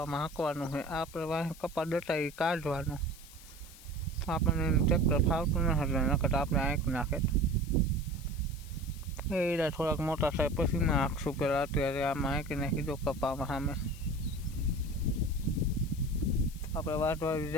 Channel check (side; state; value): left; noise; hiss, 19 dB below the sound